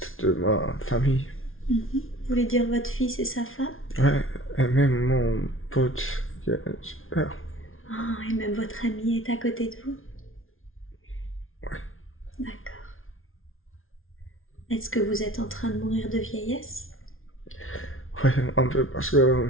de ma famille. Vous voulez dire votre fils et sa femme? Ouais, et même mon pote qui est super. Ah, et même votre ami est à côté de vous? Ouais. D'accord. Est-ce que vous êtes en train de mourir de vieillesse? Ouais, un peu parce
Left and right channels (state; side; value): late; right; 0.60 ms